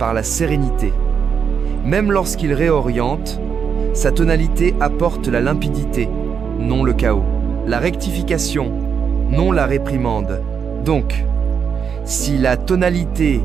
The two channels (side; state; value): left; quieter; 6.8 dB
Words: la sérénité. Même lorsqu'il réoriente, sa tonalité apporte la limpidité, non le chaos. La rectification, non la réprimande. Donc, si la tonalité